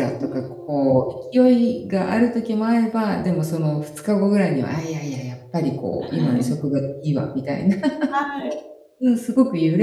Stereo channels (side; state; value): both; identical; correlation 1.00